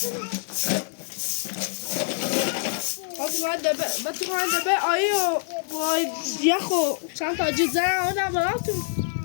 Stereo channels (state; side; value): silent; right; digital silence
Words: فاطمه دبه آیی و وای یخو چند تا جد زن آدم براتون